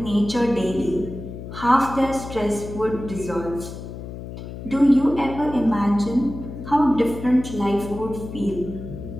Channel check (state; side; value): noise; left; hum, 10 dB below the sound